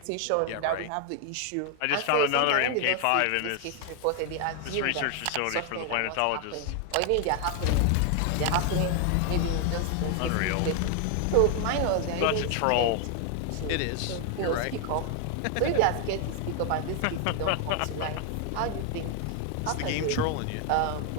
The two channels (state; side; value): different; both; correlation 0.00